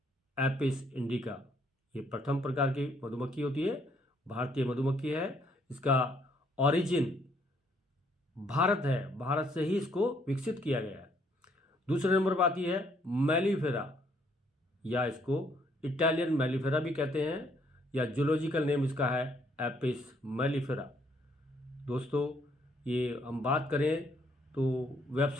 एपिस इंडिका। ये प्रथम प्रकार की मधुमक्खी होती है, भारतीय मधुमक्खी है। इसका ओरिजिन भारत है, भारत से ही इसको विकसित किया गया है। दूसरे नंबर पर आती है मेलिफेरा, या इसको इटालियन मेलिफेरा भी कहते हैं, या जूलॉजिकल नेम इसका है एपिस मेलिफेरा। दोस्तों ये हम बात करें तो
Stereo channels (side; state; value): both; normal; correlation 0.68